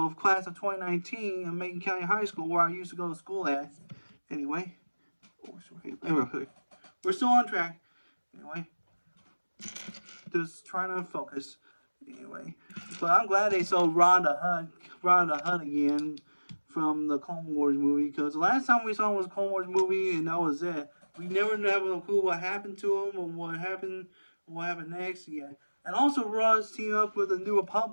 of class of 2019 in Macon County High School, where I used to go to school at. Anyway, we're still on track. Anyway, just trying to focus. Anyway, but I'm glad they sold Rhonda Hutt again from the Clone Wars movie, because the last time we saw him was a Clone Wars movie, and that was it. We never have a clue what happened to him or what happened next. Yeah, and also Ross teamed up with the New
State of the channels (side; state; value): both; inverted; correlation -1.00